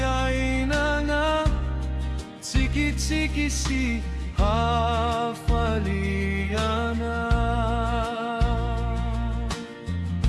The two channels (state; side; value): identical; both; correlation 1.00